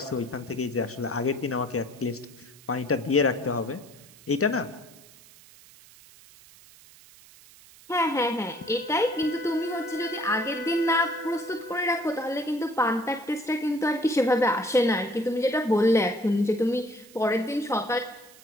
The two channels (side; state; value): right; noise; hiss, 23 dB below the sound